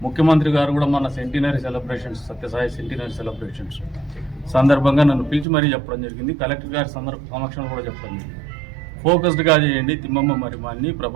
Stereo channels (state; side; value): drops out; left; at 5.5 s